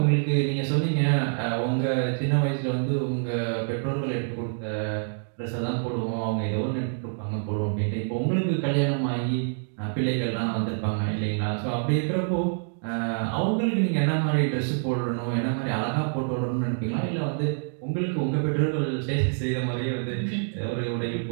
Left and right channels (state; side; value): silent; left; digital silence